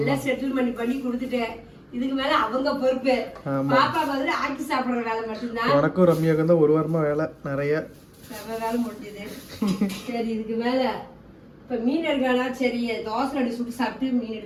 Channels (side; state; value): both; identical; correlation 1.00